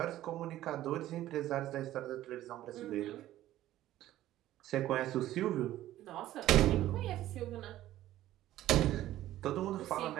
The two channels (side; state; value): left; quieter; 14.1 dB